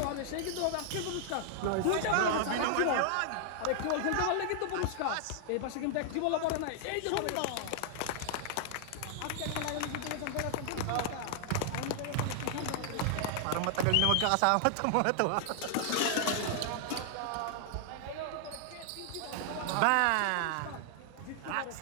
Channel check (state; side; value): different; both; correlation 0.00